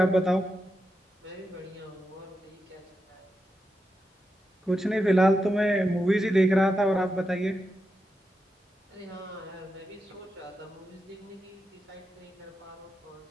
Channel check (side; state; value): both; normal; correlation 0.87